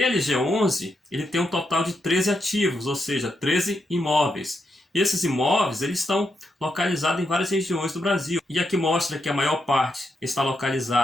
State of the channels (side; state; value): both; normal; correlation 0.83